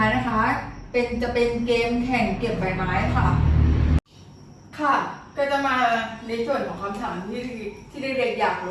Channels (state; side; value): identical; both; correlation 1.00